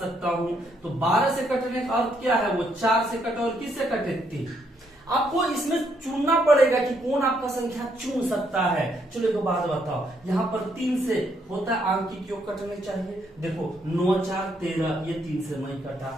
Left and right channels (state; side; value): normal; both; correlation 0.73